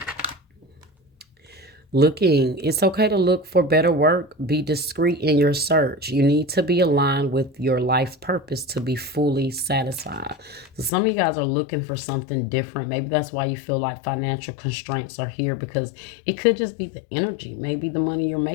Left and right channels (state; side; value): drops out; right; at 10.9 s